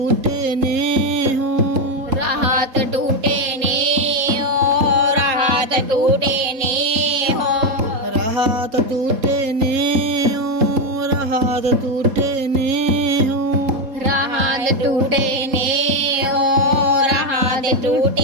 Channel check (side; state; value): left; late; 3.7 ms